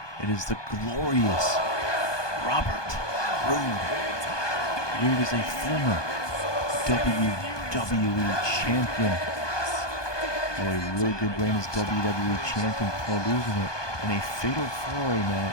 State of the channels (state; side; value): late; right; 1.2 ms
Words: it is the glorious Robert Roode. Roode is a former WWE champion. Had a really good reign as WWE champion before losing it in a fatal 4-way